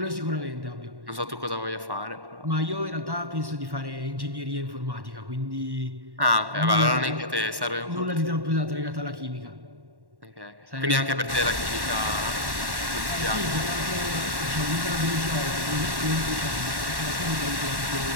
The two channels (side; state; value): left; late; 1.1 ms